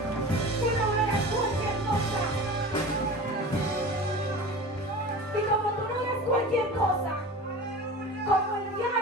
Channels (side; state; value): both; normal; correlation 0.35